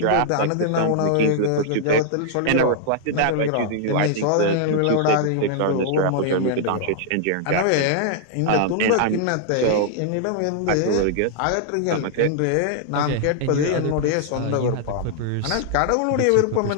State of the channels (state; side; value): different; both; correlation -0.01